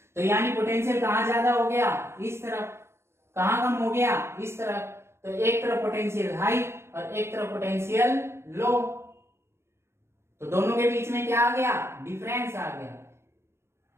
तो यानी पोटेंशियल कहां ज्यादा हो गया, इस तरफ। कहां कम हो गया, इस तरफ। तो एक तरफ पोटेंशियल हाई और एक तरफ पोटेंशियल लो, तो दोनों के बीच में क्या आ गया, डिफरेंस आ गया,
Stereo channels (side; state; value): left; late; 0.13 ms